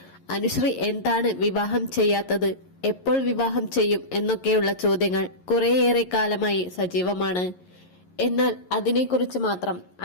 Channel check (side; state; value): right; late; 11 ms